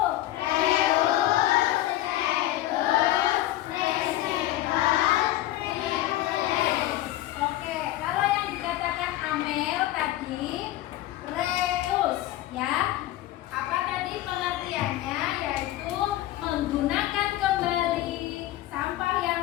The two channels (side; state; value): right; quieter; 15.2 dB